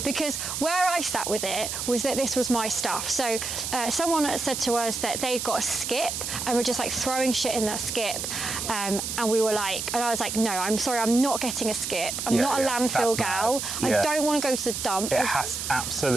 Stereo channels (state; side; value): noise; right; hiss, 4 dB below the sound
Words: because where I sat with it was that this was my stuff. So someone said to us that they'd got a skip and we're just like throwing shit in that skip, and we were like, and I was like, no, I'm sorry, I'm not getting a skip. I'm not a landfill gal. I don't want to go to the dump. It